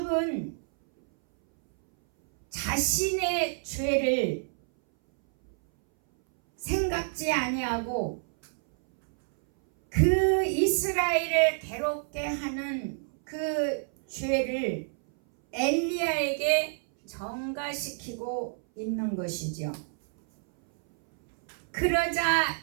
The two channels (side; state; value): left; silent; 59 dB below the other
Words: 자신의 죄를 생각지 아니하고 그 이스라엘을 괴롭게 하는 그 죄를 엘리야에게 전가시키고 있는 것이죠. 그러자